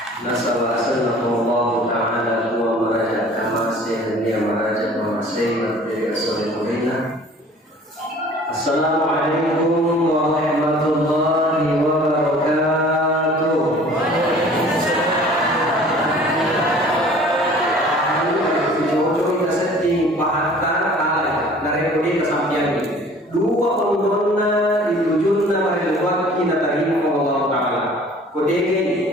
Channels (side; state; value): both; normal; correlation 0.49